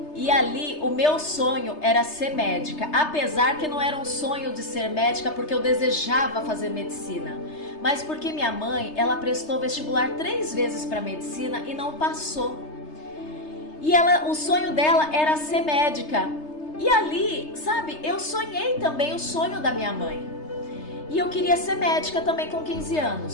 E ali o meu sonho era ser médica, apesar que não era um sonho de ser médica porque eu desejava fazer medicina, mas porque minha mãe, ela prestou vestibular 3 vezes para medicina e não passou. E o sonho dela era ser médica. E ali, sabe, eu sonhei também o sonho da minha mãe. E eu queria ser médica também com 15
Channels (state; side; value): late; right; 3.3 ms